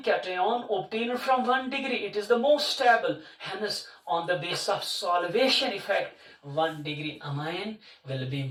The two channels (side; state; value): both; identical; correlation 1.00